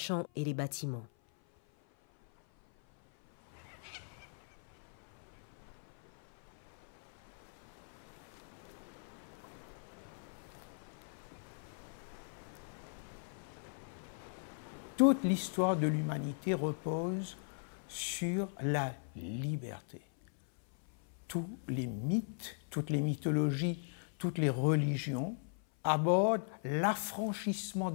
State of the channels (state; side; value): silent; right; 52 dB below the other